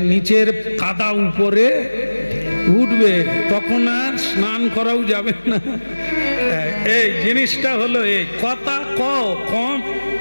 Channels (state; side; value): inverted; both; correlation -1.00